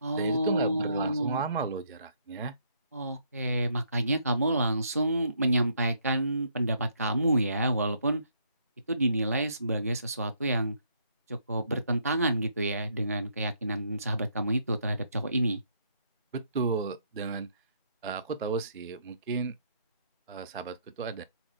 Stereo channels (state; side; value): inverted; both; correlation -0.71